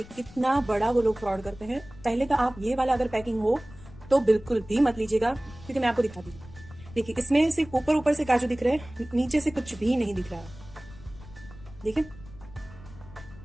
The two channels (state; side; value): noise; left; rumble, 18 dB below the sound